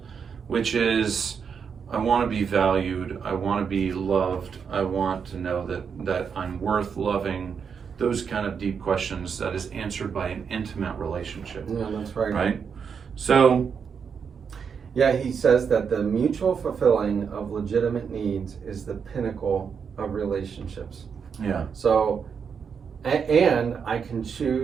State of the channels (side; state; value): left; quieter; 6.5 dB